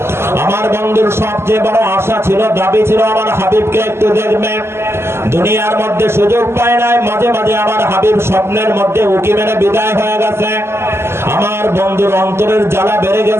আমার বন্ধুর সবচেয়ে বড় আশা ছিল, দাবি ছিল, আমার হাবিবকে একটু দেখবে। দুনিয়ার মধ্যে সুযোগ পায় নাই, মাঝে মাঝে আমার হাবিব স্বপ্নের মধ্যে উকি মেরে বিদায় হয়ে গেছে। আমার বন্ধুর অন্তরের জ্বালা বেড়ে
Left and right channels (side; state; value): left; late; 0.12 ms